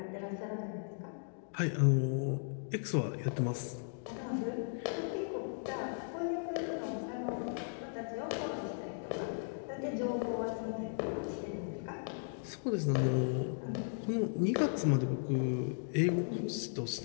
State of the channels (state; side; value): silent; right; digital silence